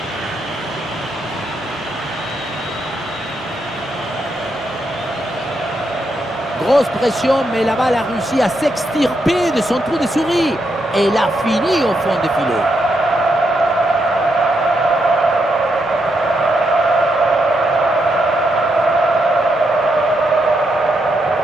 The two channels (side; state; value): both; normal; correlation 0.80